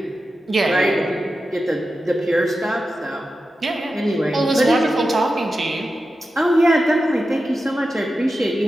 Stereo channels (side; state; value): both; normal; correlation 0.91